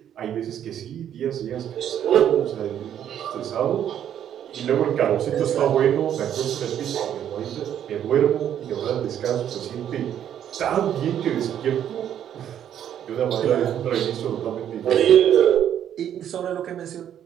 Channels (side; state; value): left; quieter; 10.0 dB